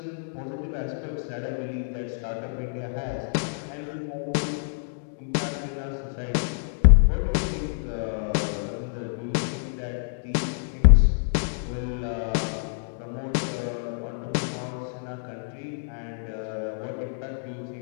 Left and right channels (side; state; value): right; silent; digital silence